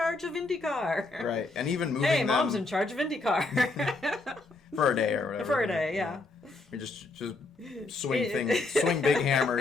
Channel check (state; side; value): quieter; right; 3.3 dB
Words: of IndyCar. Right, and even moving Hey, them mom's in charge of IndyCar. for a day or whatever. For a day, yeah. We just swing big